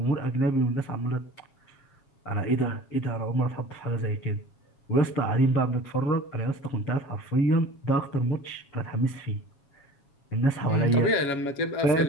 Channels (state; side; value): late; right; 7.2 ms